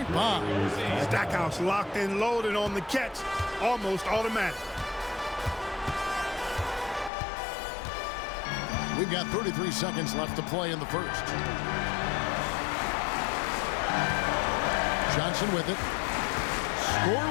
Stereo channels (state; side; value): drops out; right; at 7.1 s